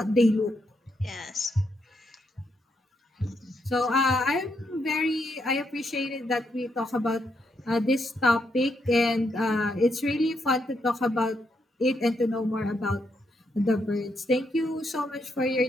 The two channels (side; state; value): both; normal; correlation 0.79